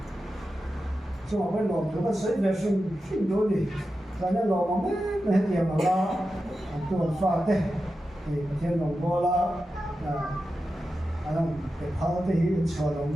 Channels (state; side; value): normal; both; correlation 0.91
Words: chúng ta phải làm cho cái sự vệ sinh đối đi, và nếu làm mà mấy tiền mà la tuần pha thế thì thiên đồng bò la anh cái phao thế thì cho lòng